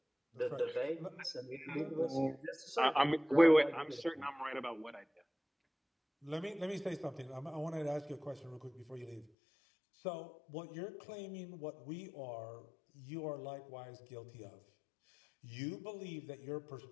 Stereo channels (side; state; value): right; drops out; at 9.3 s